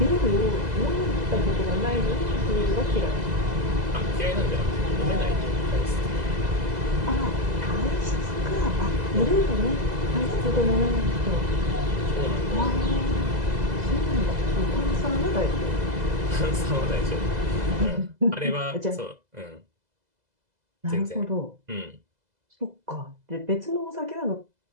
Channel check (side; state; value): left; late; 2.0 ms